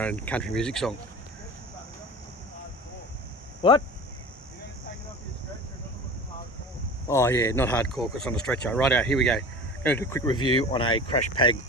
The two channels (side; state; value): both; normal; correlation 0.36